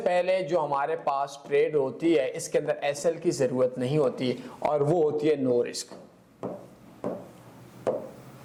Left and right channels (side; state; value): both; identical; correlation 1.00